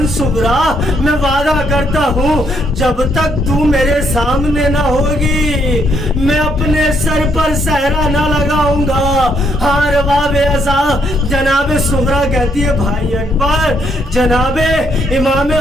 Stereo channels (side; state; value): both; normal; correlation 0.72